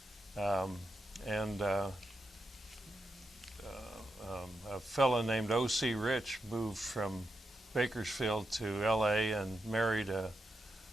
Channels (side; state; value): both; normal; correlation 0.86